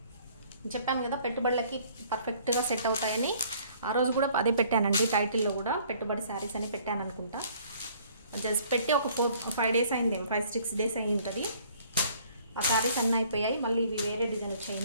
చెప్పాను కదా పెట్టుబడులకి పర్ఫెక్ట్గా సెట్ అవుతాయని. ఆ రోజు కూడా అదే పెట్టానండి, టైటిల్లో కూడా పెట్టుబడి శారీస్ అని పెట్టాను అనుకుంటా. జస్ట్ పెట్టి ఒక 4-5 డేస్ అయింది, 5-6 డేస్ అయి ఉంటుంది. ఆ శారీస్ అన్నీ అయిపోయాయి. మళ్ళీ ఇవి వేరే డిజైన్ వచ్చాయి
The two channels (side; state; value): both; inverted; correlation -0.58